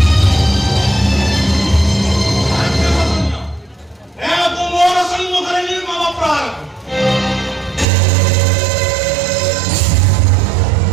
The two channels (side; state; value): left; drops out; at 7.9 s